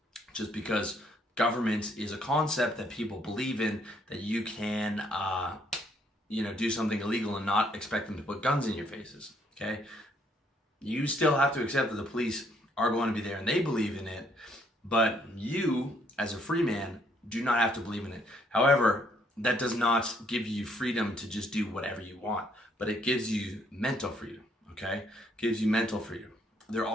just because government is a concept that people believe in, that you can, do something illegal and not expect them to put guns in your faces, okay? You still have to accept that the police are going to be there and they believe in it, but you, as a free man, do not have to believe in it. However, that does not give you freedom to just do whatever you want, but it gives you mental freedom, okay? It gives you mental freedom. There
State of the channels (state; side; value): normal; both; correlation 0.68